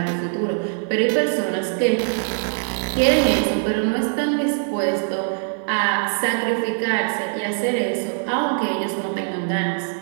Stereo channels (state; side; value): silent; left; 64 dB below the other